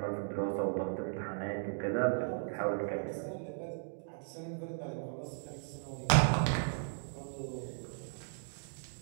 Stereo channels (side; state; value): left; silent; digital silence